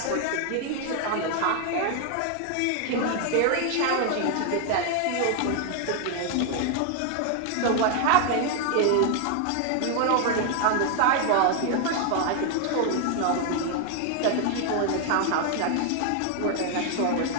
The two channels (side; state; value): both; different; correlation 0.00